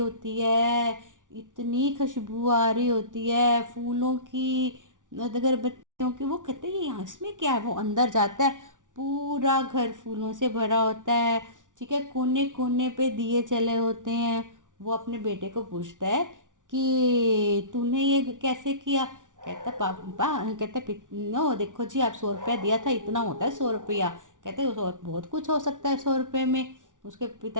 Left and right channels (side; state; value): left; late; 0.87 ms